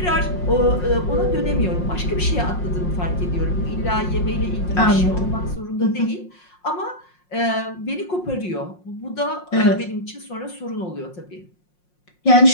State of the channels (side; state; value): right; late; 5.6 ms